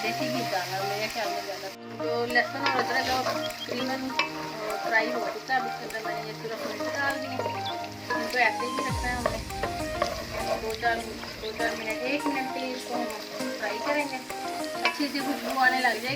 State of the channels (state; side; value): identical; both; correlation 1.00